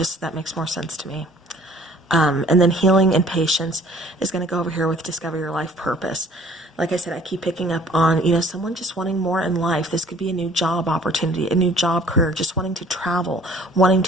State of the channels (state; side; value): normal; both; correlation 0.54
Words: that makes more sense to me. And then healing and patience is going to go over here with discover your life purpose. Like I said, I keep picking up on, someone just wanting more in life. This could be a new job opportunity, a new job career, just wanting to travel, wanting